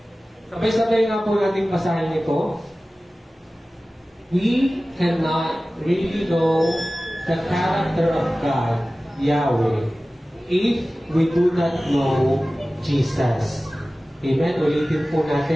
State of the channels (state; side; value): normal; both; correlation 0.96